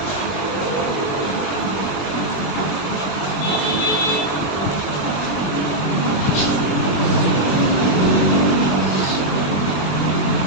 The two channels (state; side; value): late; right; 21 ms